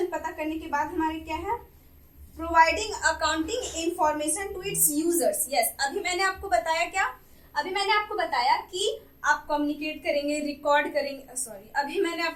पता करने के बाद हमारे क्या है, providing accounting information to its users, yes. अभी मैंने आपको बताया क्या, अभी मैंने आपको बताया कि आप कम्युनिकेट करेंगे, रिकॉर्ड करेंगे, सॉरी अभी मैंने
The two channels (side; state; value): both; identical; correlation 1.00